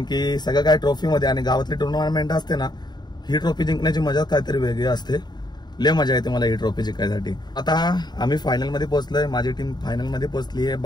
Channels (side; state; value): right; late; 0.20 ms